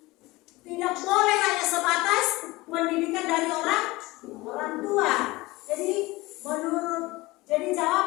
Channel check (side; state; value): right; quieter; 20.9 dB